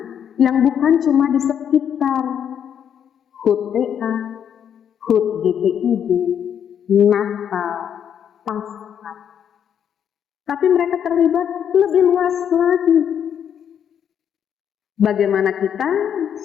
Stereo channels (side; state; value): right; quieter; 8.7 dB